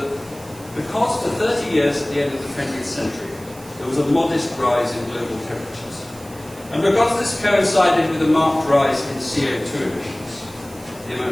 because for 30 years at the end of the 20th century, there was a modest rise in global temperatures, and because this coincided with a marked rise in CO2 emissions, the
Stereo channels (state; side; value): noise; right; hiss, 21 dB below the sound